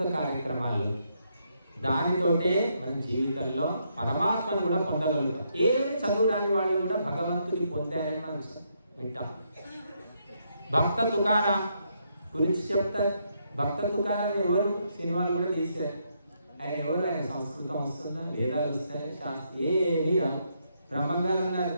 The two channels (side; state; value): both; inverted; correlation -0.77